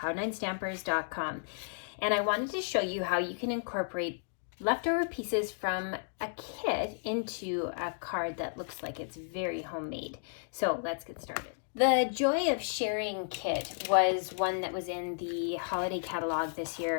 and I wanted to show you how you can incorporate leftover pieces from a kit into a card that looks like it's very homemade. So let's get started. The Joy of Sharing kit was one that was in the holiday catalog this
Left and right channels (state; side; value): silent; right; digital silence